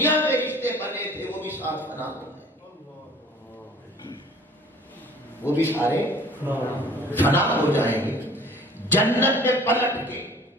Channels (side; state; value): both; normal; correlation 0.50